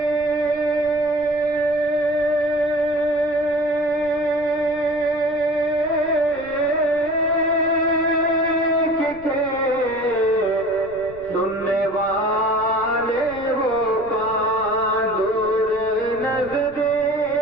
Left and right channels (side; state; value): right; noise; rumble, 21 dB below the sound